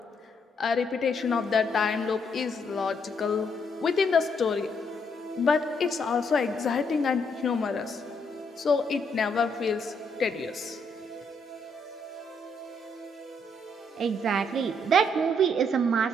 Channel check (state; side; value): normal; both; correlation 0.73